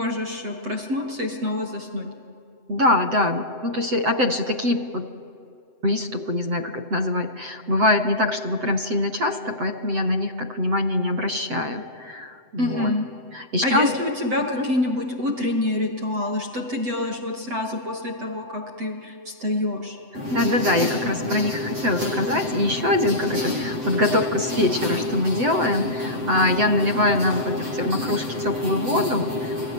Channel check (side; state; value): left; late; 7.9 ms